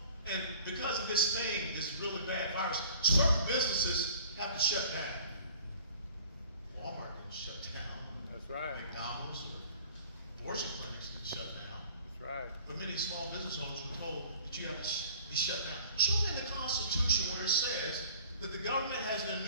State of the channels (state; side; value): inverted; both; correlation -0.50